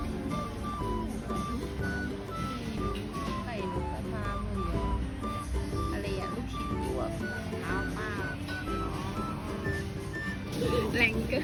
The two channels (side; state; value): both; identical; correlation 1.00